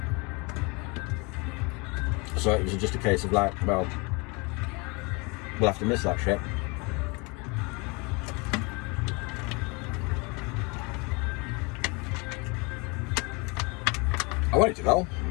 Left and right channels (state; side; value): quieter; right; 29.1 dB